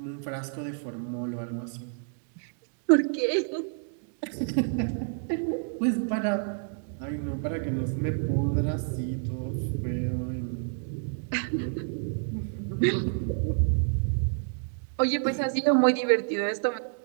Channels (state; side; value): silent; left; digital silence